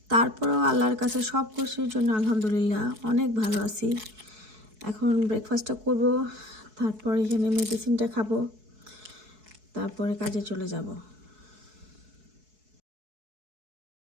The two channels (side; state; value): left; late; 4.7 ms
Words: তারপরেও আল্লাহর কাছে সব কিছুর জন্য আলহামদুলিল্লাহ অনেক ভালো আছি। এখন ব্রেকফাস্টটা করব, তারপর এখানে মেডিসিনটা খাবো, তারপরে কাজে চলে যাব।